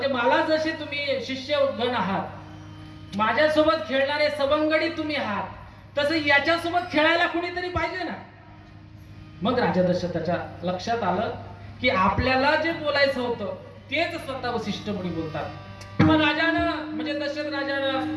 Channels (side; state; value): both; identical; correlation 1.00